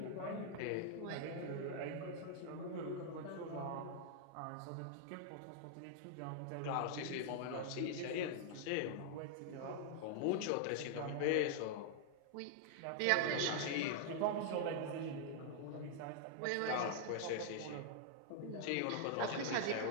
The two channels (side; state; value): both; different; correlation -0.01